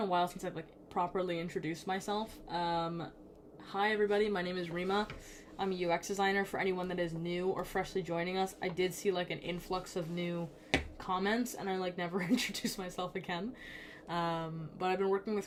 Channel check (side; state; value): both; identical; correlation 1.00